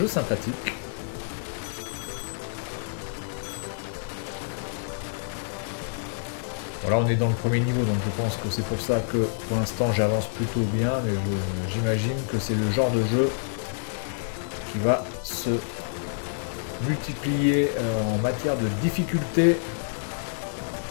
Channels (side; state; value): right; silent; digital silence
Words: sympathique. Voilà, on est dans le premier niveau, donc je pense que c'est pour ça que pour l'instant j'avance plutôt bien, mais j'imagine que c'est le genre de jeu qui va se multiplier en matière de difficulté.